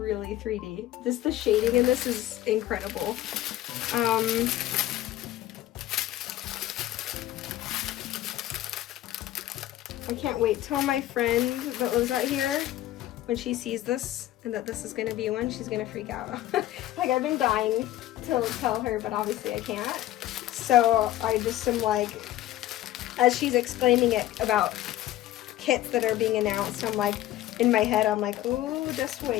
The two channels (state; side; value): quieter; right; 14.2 dB